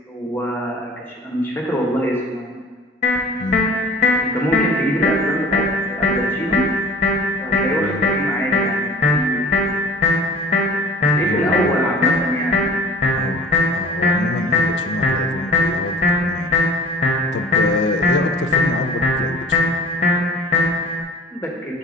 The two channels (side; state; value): both; normal; correlation 0.45